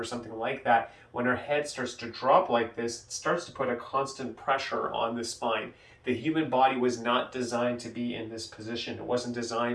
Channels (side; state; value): both; identical; correlation 1.00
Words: something like that, when our head starts to drop like this, it starts to put a constant pressure on the spine. The human body was not designed to be in this position. It wasn't